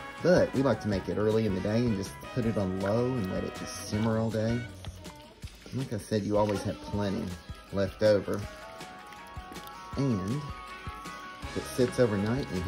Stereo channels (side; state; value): both; identical; correlation 1.00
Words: But we like to make it early in the day and just put it on low and let it just simmer all day. Like I said, you always have plenty left over. And if it sits overnight and you